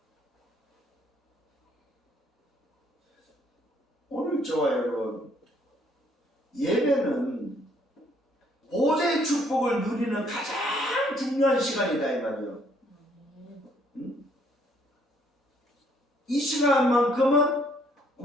오늘 저와 여러분 예배는 보좌의 축복을 누리는 가장 중요한 시간이다 이 말이에요. 이 시간만큼은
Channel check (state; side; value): normal; both; correlation 0.65